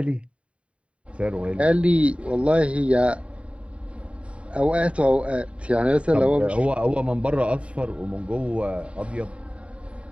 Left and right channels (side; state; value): left; late; 0.062 ms